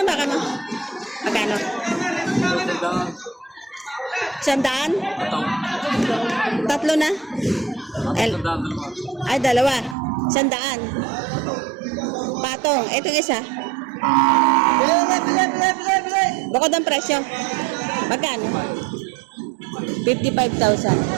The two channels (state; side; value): drops out; left; at 10.0 s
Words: baka, no? Magkano? 100? Tatlo na? Ay, dalawa. 100. Patong. Itong isa. Bukod ang presyo. Magkano? 55,000.